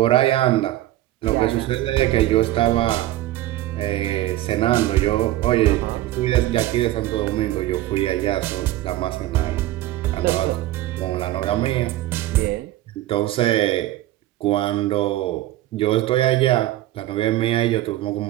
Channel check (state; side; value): quieter; left; 15.3 dB